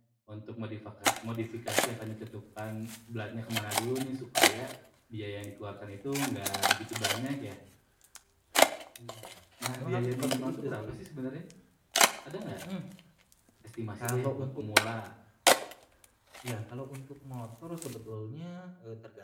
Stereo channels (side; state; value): both; identical; correlation 1.00